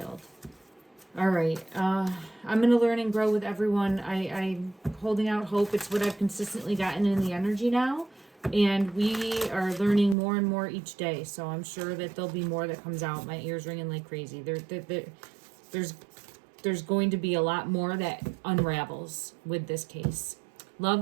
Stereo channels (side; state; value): left; drops out; at 10.2 s